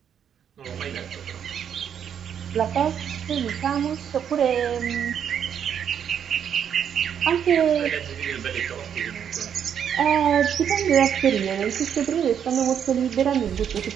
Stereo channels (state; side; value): quieter; left; 8.5 dB